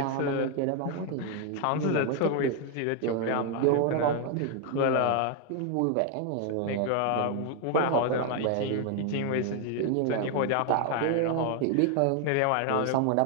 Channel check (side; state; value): both; different; correlation 0.01